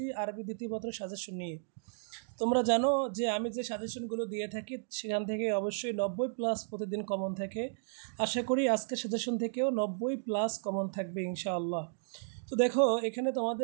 আরবি দ্বিতীয় পত্রের সাজেশন নিয়ে। তোমরা জানো যে আমি যে সাজেশনগুলো দিয়ে থাকি সেখান থেকে অবশ্যই 90+ প্রতিদিন কমন থাকে। আশা করি আজকের সাজেশন থেকেও 90+ কমন থাকবে ইনশাআল্লাহ। তো দেখো, এখানে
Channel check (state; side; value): silent; left; digital silence